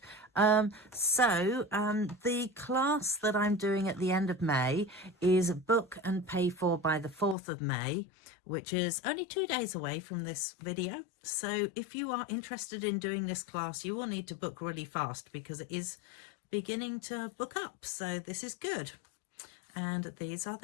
The class that I'm doing at the end of May is book and pay for by the 4th of May, which is only 2 days away from this video. So if you are interested in doing this class, you will need to book really fast because it is beginning to book up. So this is good. And these are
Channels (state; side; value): drops out; right; at 7.4 s